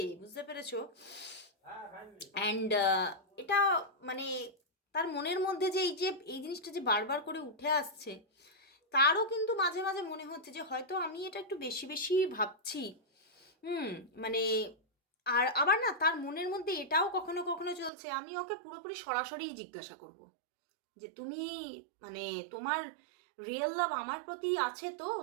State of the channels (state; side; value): drops out; left; at 17.9 s